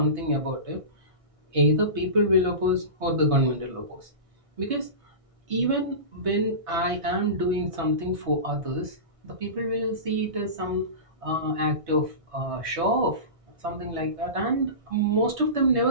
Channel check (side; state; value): left; late; 1.6 ms